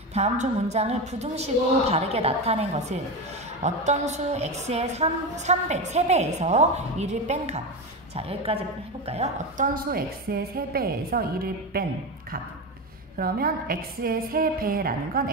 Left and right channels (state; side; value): normal; both; correlation 0.18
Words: 다음 중 문장을 부등식으로 바르게 나타낸 것은 어떤 수 x의 3배에서 1을 뺀 값. 자, 여기까지 해볼까요? 어떤 수 x의 3배에서 1을 뺀 값. 그러면 x의 3배라는 건